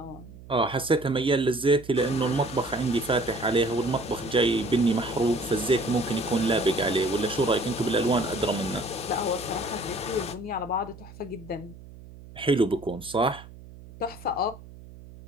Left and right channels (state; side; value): noise; right; hum, 18 dB below the sound